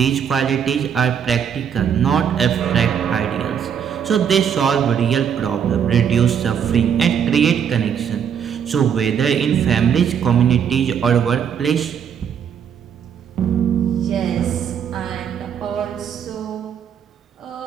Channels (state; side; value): quieter; left; 8.0 dB